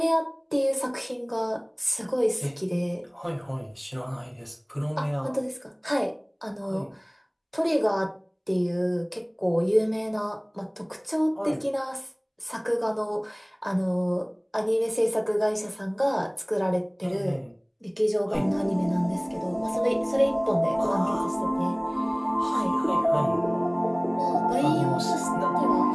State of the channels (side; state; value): both; identical; correlation 1.00